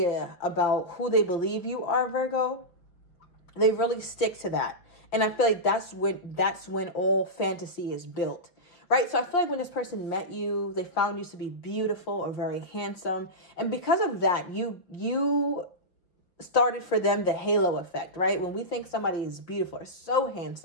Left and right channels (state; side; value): late; right; 5.7 ms